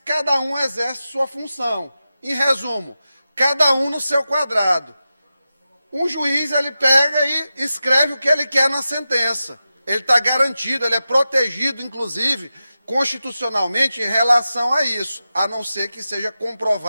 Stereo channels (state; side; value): inverted; both; correlation -0.92